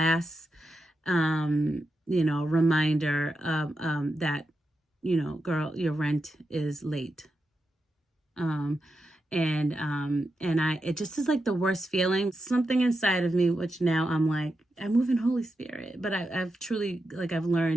reminder of that, girl, your rent is late. Um, and it just is like the worst feeling. Something inside of me, which now I'm like, I move in Holy Spirit, but I've truly like I've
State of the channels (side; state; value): both; normal; correlation 0.88